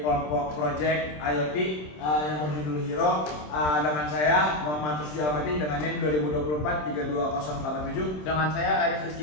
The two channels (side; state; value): right; late; 27 ms